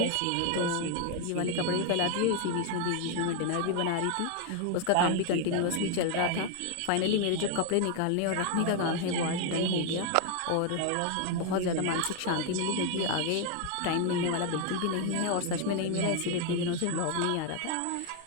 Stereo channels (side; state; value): both; different; correlation 0.01